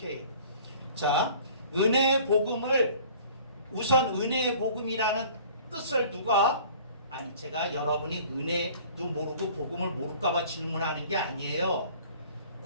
자, 은혜의 복음을 우선 은혜의 복음이라는 뜻을 누가 제가 여러분이 은혜도 모르고 복음을 모를까봐 질문하는 게 아니에요.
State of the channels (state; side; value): inverted; both; correlation -0.49